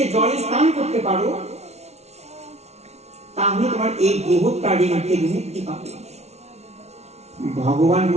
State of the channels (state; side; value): late; left; 0.31 ms